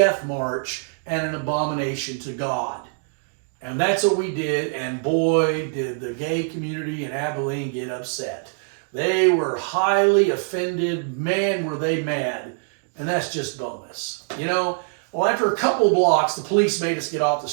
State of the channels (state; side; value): silent; left; digital silence